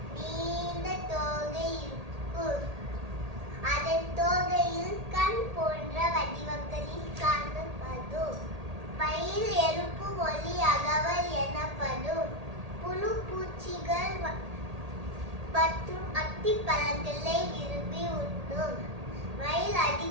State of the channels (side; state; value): left; late; 1.8 ms